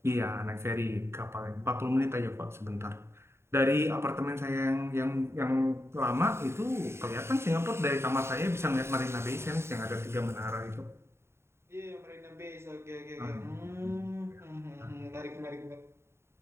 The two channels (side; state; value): left; late; 0.12 ms